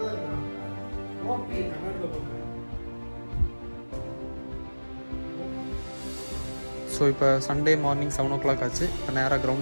ஸோ இப்போ சண்டே மார்னிங் 7 o'clock ஆச்சு. இப்போ நேராக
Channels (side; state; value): both; inverted; correlation -1.00